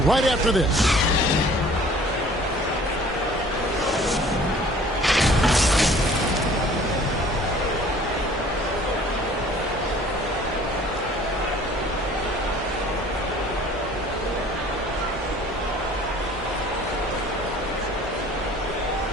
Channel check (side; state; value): both; normal; correlation 0.51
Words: right after this.